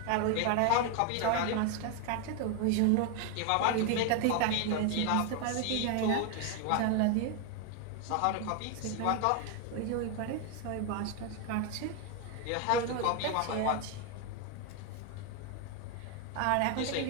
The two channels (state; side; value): different; both; correlation 0.01